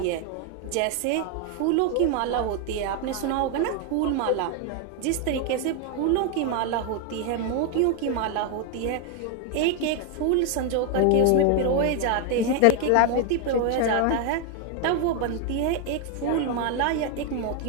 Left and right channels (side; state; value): both; different; correlation 0.01